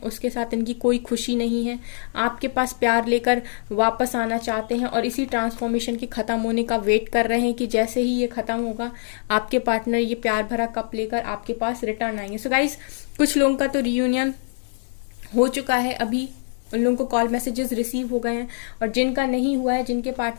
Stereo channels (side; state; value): right; silent; 63 dB below the other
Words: उसके साथ इनकी कोई खुशी नहीं है। आपके पास प्यार लेकर वापस आना चाहते हैं और इसी ट्रांसफॉर्मेशन के ख़त्म होने का वेट कर रहे हैं कि जैसे ही ये ख़त्म होगा आपके पार्टनर ये प्यार भरा कप लेकर आपके पास रिटर्न आएंगे। सो गाइस, कुछ लोगों का तो रियूनियन हो चुका है, अभी उन लोगों को कॉल मैसेजेस रिसीव हो गए हैं, और जिनका नहीं हुआ है, जिनके